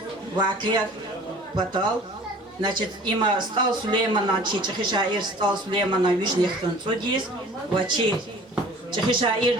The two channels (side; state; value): both; normal; correlation 0.47